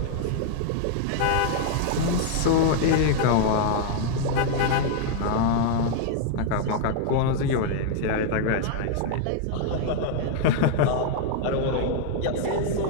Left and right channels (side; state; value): both; different; correlation 0.00